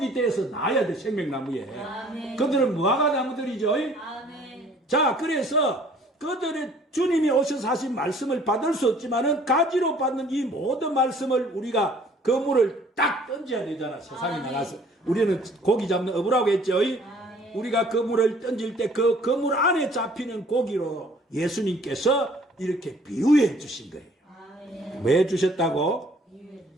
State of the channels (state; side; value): normal; both; correlation 0.56